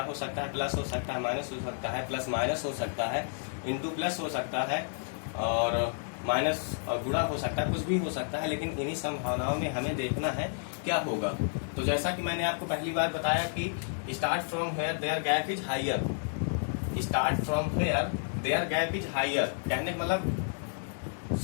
हो सकता है? प्लस हो सकता है, माइनस हो सकता है, प्लस माइनस हो सकता है, इंटू प्लस हो सकता है, और माइनस और गुणा हो सकता है, कुछ भी हो सकता है। लेकिन इन्हीं संभावनाओं में हमें देखना है क्या होगा। तो जैसा कि मैंने आपको पहली बार बताया कि start from where their gap is higher. Start from where their gap is higher कहने का मतलब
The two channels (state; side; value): silent; right; digital silence